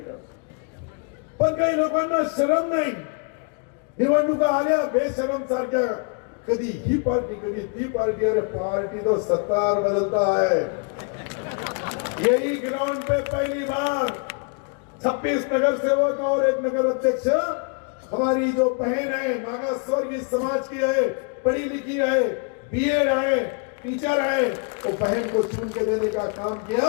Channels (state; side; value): quieter; right; 36.7 dB